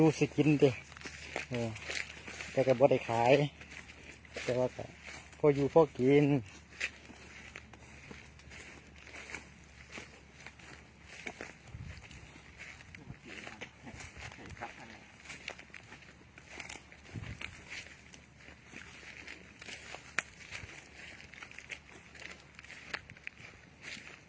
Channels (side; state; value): both; identical; correlation 1.00